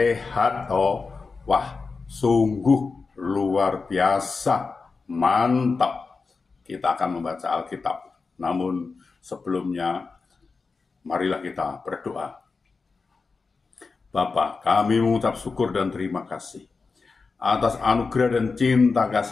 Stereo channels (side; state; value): right; quieter; 4.4 dB